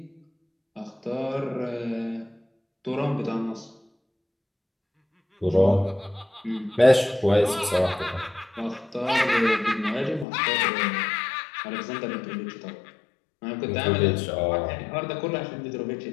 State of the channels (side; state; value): right; drops out; at 10.2 s